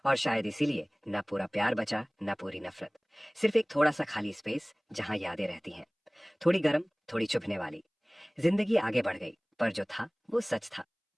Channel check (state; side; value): identical; both; correlation 1.00